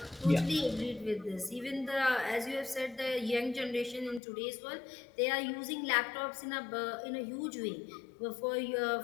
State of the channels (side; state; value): right; drops out; at 4.2 s